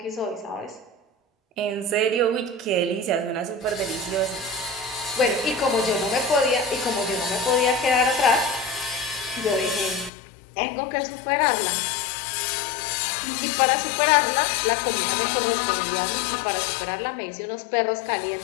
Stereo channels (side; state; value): right; drops out; at 10.1 s